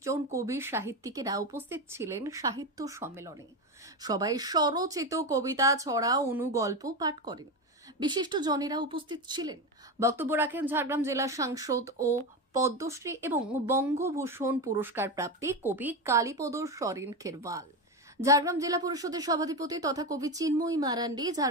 জন কবি সাহিত্যিকেরা উপস্থিত ছিলেন সাহিত্য সম্মেলনে। সবাই স্বরচিত কবিতা, ছড়া, অনুগল্প পাঠ করেন। বিশিষ্ট জনেরা উপস্থিত ছিলেন। বক্তব্য রাখেন ঝাড়গ্রাম জেলা সাংসদ ও পদ্মশ্রী এবং বঙ্গভূষণ পুরস্কার প্রাপ্তি কবি কালীপদ সরেন খেরওয়াল, ঝাড়গ্রাম জেলা পরিষদের সভাধিপতি তথা কবি চিন্ময়ী মারান্ডি,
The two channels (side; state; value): both; normal; correlation 0.17